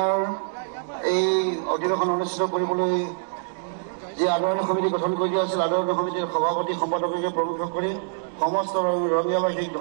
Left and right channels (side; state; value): left; silent; digital silence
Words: এই অধিৱেশন অনুষ্ঠিত কৰিবলৈ যি আদৰণি সমিতি গঠন কৰি দিয়া হৈছিল আদৰণি সমিতিৰ সভাপতি সম্পাদককে প্ৰৱেশ কৰি সমস্ত ৰঙিয়াবাসীক